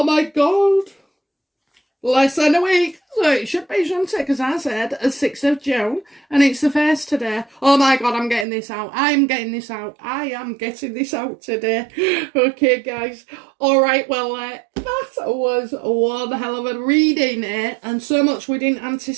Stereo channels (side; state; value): left; drops out; at 8.5 s